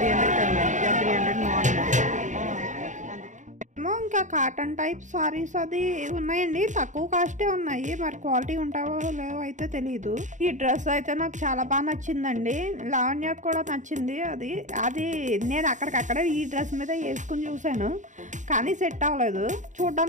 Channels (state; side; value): late; left; 0.36 ms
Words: 300 ఇంకా కాటన్ టైప్ సారీస్ అది ఉన్నాయండి. తక్కువ కాస్టే ఉన్నాయి, మరి క్వాలిటీ ఉంటావో లేవో అయితే తెలియదు. ఈ డ్రెస్ అయితే నాకు చాలా బాగా నచ్చిందండి. లావణ్యకు కూడా నచ్చింది. అది నేను అక్కడికక్కడే ఈ డ్రెస్ మీద వేసుకుని చూసాను, కానీ సెట్ అవ్వలేదు.